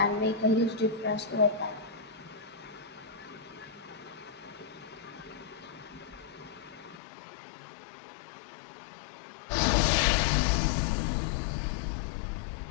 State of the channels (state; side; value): drops out; right; at 7.0 s